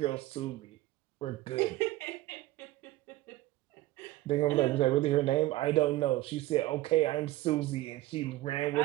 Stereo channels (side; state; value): left; quieter; 17.1 dB